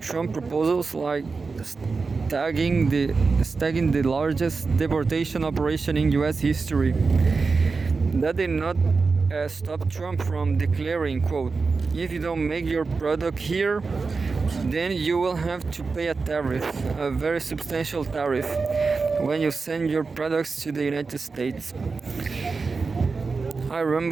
proposals like stagging the largest deportation operation in U.S. history. That did not stop Trump from declaring, quote, "If you don't make your product here, then you will have to pay a tariff, a very substantial tariff, when you send your products to the United States." I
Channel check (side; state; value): left; quieter; 4.4 dB